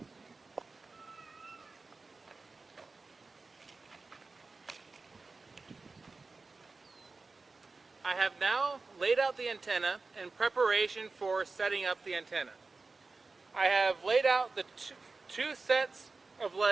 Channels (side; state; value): left; quieter; 3.9 dB